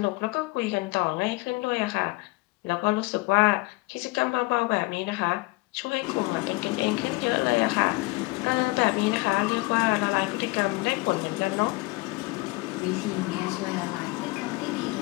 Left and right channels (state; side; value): quieter; right; 23.9 dB